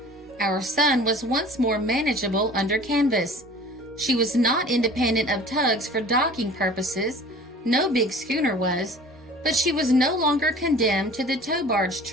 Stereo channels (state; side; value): normal; both; correlation 0.45